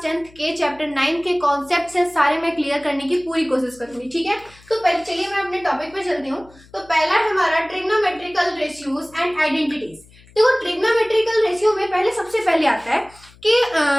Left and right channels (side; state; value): left; noise; hum, 26 dB below the sound